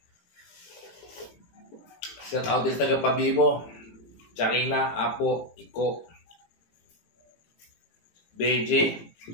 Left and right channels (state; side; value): late; right; 18 ms